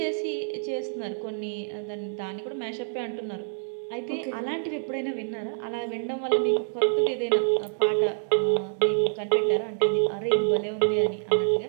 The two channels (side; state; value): left; silent; digital silence